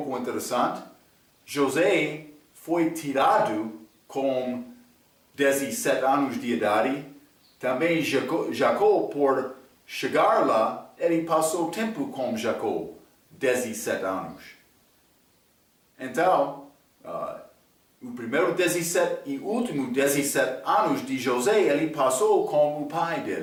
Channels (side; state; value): both; identical; correlation 1.00